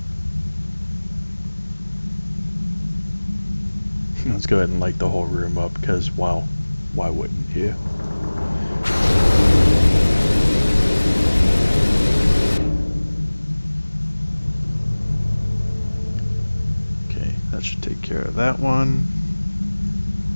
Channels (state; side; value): inverted; both; correlation -1.00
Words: Let's go ahead and light the whole room up, because, well, why wouldn't you? Okay, that should take care of that one.